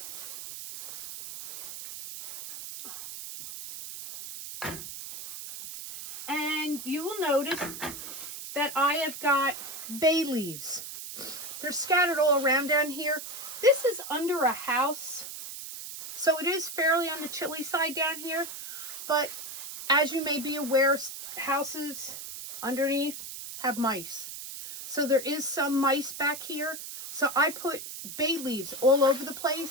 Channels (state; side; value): noise; right; hiss, 9 dB below the sound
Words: And you will notice that I have got bay leaves. They're scattered all around down here. This is under a house, so it is fairly on the chilly side down here. But as you may be aware, houses underneath have mice. So there is some mice back here. So I put bay leaves all over the